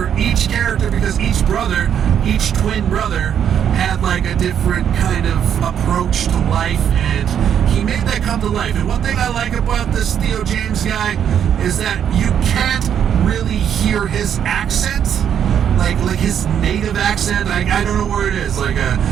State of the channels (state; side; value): quieter; left; 8.9 dB